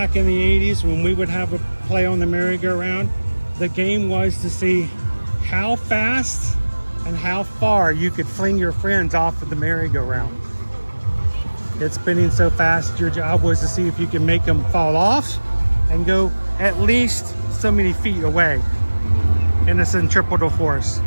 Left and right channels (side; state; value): both; inverted; correlation -1.00